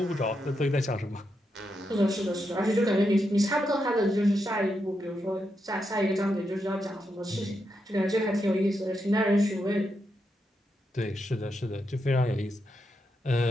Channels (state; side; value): normal; both; correlation 0.84